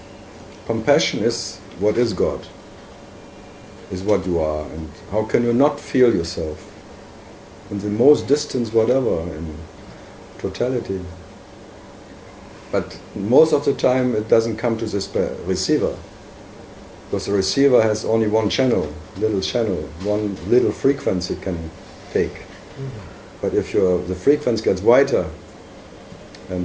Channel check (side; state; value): both; identical; correlation 1.00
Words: Compassion is what is God, is what you are, and how can you not feel yourself in the most distant whatever, in totality. But most of the time it doesn't come to this receiver, because the receiver has only one channel, one little frequency can take. But if the frequency gets wider